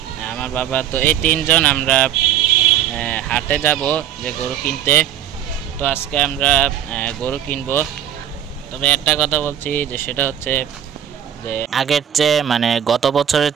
আমার বাবা। তো এই তিনজন আমরা হাটে যাব যে গরু কিনতে। তো আজকে আমরা গরু কিনবো। তবে একটা কথা বলছি যে সেটা হচ্ছে যে আগের চেয়ে মানে গত বছরের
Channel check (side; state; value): left; quieter; 10.1 dB